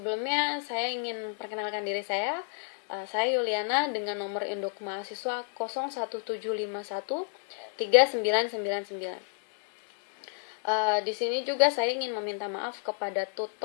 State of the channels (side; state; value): right; silent; digital silence